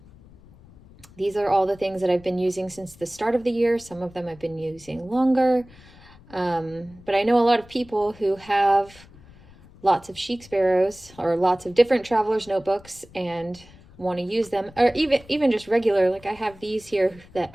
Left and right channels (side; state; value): left; noise; rumble, 23 dB below the sound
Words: These are all the things that I've been using since the start of the year. Some of them I've been using longer. But I know a lot of people who have lots of Chic Sparrows or lots of different travelers notebooks and want to use them, or even just regular, like I have these here that